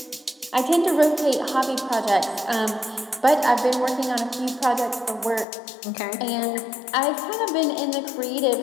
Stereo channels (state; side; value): drops out; right; at 5.5 s